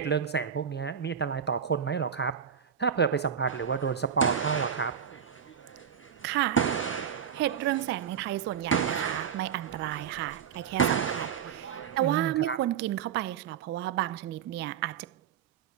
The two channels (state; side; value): quieter; left; 7.9 dB